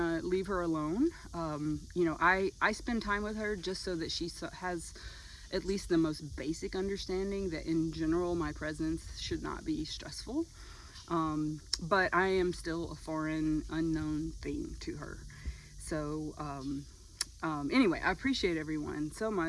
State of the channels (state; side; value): identical; both; correlation 1.00